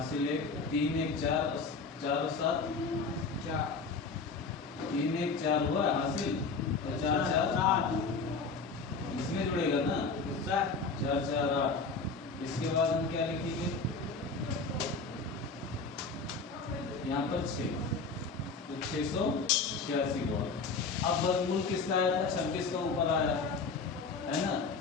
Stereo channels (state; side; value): quieter; right; 4.4 dB